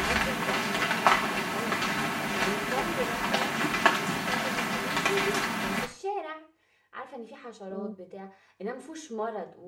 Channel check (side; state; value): both; identical; correlation 1.00